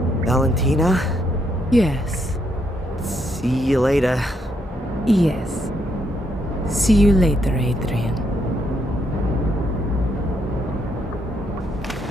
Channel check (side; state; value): both; normal; correlation 0.76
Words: Valentina? Yes. See you later. Yes. See you later, Adrian.